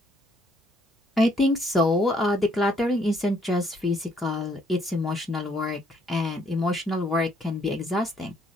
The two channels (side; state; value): both; normal; correlation 0.67